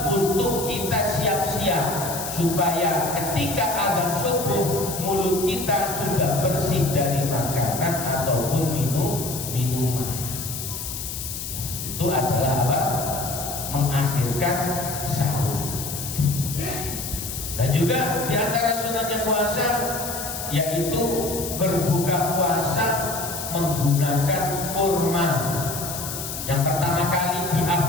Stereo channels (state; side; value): noise; left; hiss, 6 dB below the sound